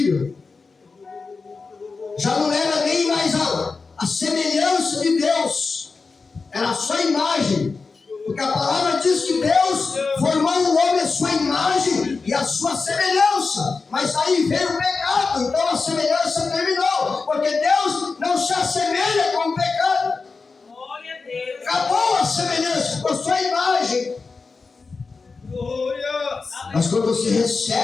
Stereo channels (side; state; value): right; quieter; 4.4 dB